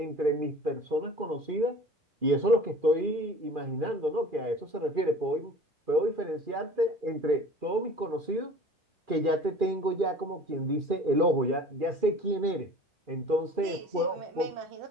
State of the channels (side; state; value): left; late; 2.4 ms